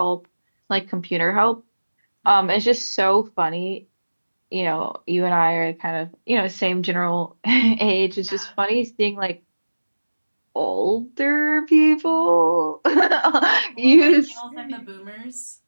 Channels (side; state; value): both; inverted; correlation -1.00